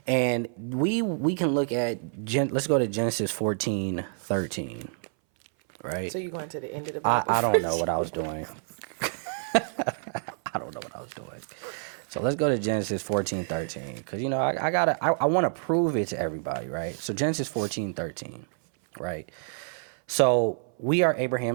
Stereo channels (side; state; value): left; silent; 59 dB below the other